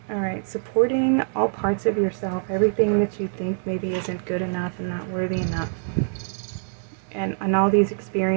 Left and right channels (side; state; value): left; silent; digital silence